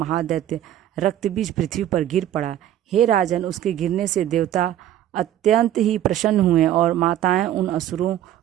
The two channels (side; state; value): left; quieter; 11.9 dB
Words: रक्तबीज पृथ्वी पर गिर पड़ा। हे राजन, उसके गिरने से देवता अत्यंत ही प्रसन्न हुए और माताएं उन असुरों